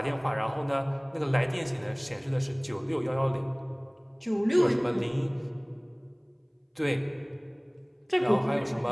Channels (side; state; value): both; identical; correlation 1.00